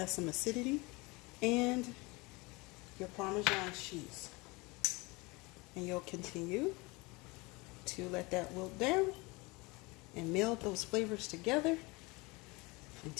some acidity, and your Parmesan cheese. And you'll continue to let that wilt down and meld those flavors together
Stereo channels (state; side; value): quieter; right; 25.1 dB